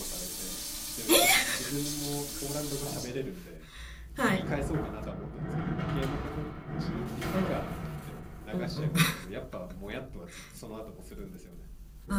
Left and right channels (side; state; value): both; identical; correlation 1.00